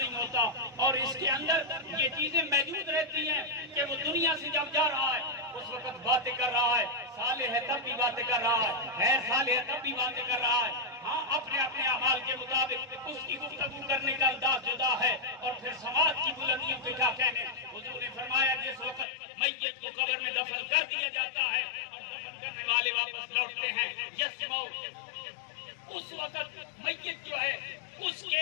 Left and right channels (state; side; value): drops out; right; at 19.1 s